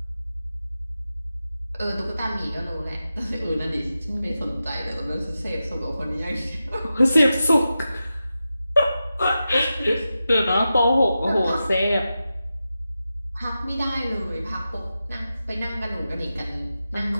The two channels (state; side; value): inverted; both; correlation -0.92